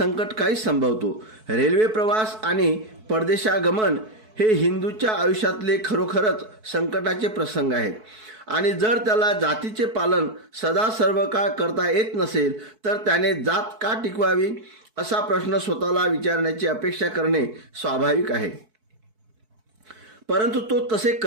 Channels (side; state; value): left; late; 4.6 ms